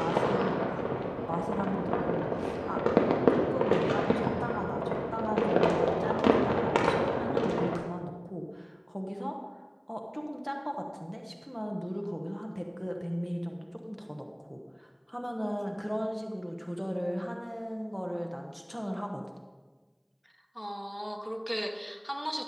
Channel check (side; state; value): both; identical; correlation 1.00